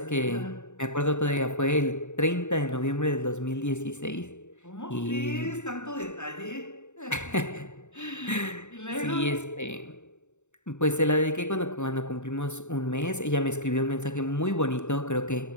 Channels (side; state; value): right; late; 0.84 ms